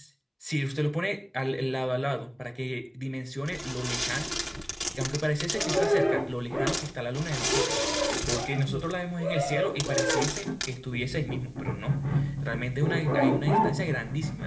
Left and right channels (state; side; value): identical; both; correlation 1.00